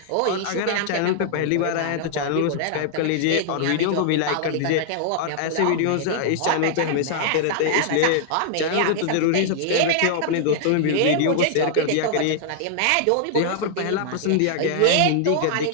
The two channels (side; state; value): both; different; correlation -0.01